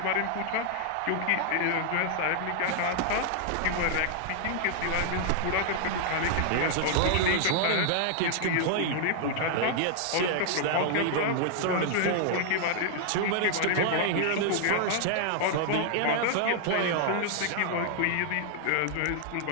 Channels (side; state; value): both; different; correlation 0.00